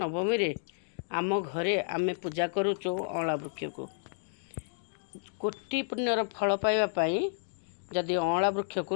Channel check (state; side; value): silent; right; digital silence